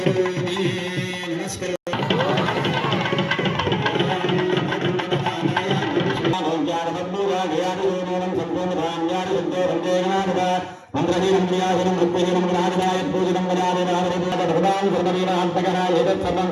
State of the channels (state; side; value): identical; both; correlation 1.00